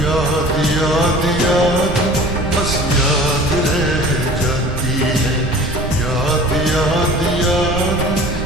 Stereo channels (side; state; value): right; noise; rumble, 7 dB below the sound